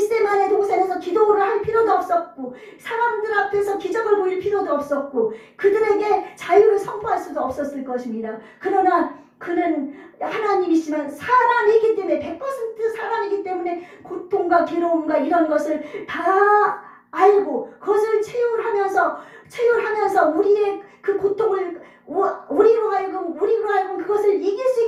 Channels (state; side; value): identical; both; correlation 1.00